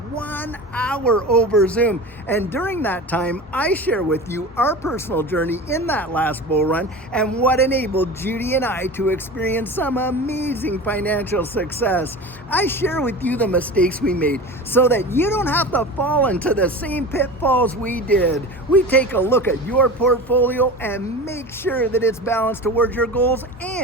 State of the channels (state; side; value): normal; both; correlation 0.32